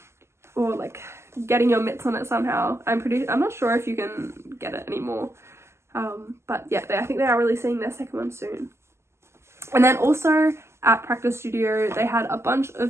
or like getting your mitts on it somehow. I'm not sure if you can get it anymore, but yeah, I think they are releasing their second one soon. And then also at Practice Studio, they had a bunch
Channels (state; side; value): late; left; 0.13 ms